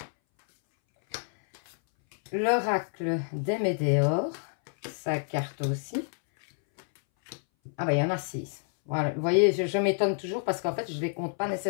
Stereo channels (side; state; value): right; silent; 59 dB below the other